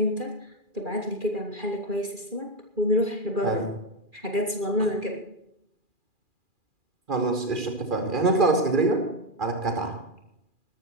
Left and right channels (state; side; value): late; left; 2.4 ms